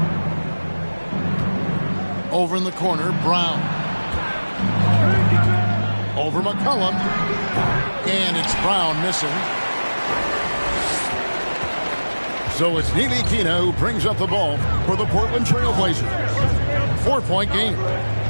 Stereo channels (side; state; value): both; inverted; correlation -1.00